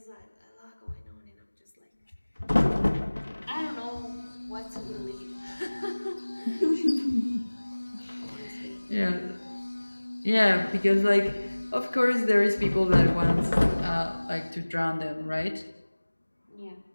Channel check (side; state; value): both; inverted; correlation -1.00